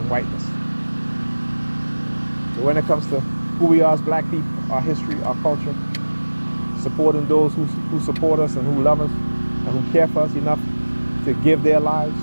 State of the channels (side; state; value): both; inverted; correlation -1.00